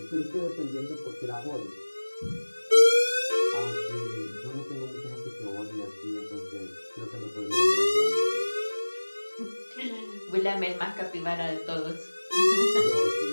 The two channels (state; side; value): inverted; both; correlation -1.00